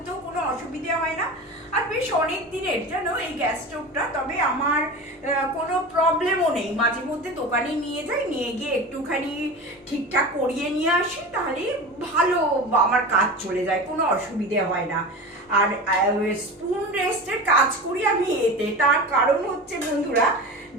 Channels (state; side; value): normal; both; correlation 0.30